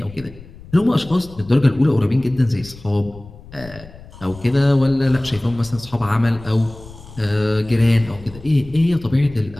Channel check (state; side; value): noise; left; rumble, 19 dB below the sound